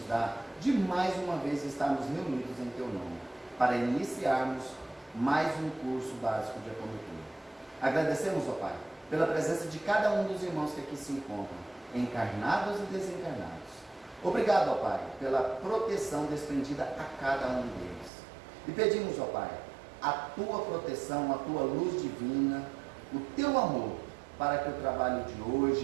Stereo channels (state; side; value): drops out; left; at 18.1 s